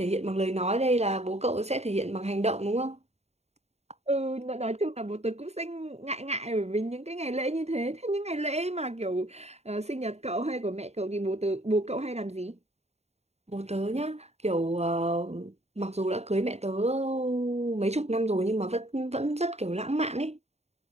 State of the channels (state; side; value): late; left; 0.31 ms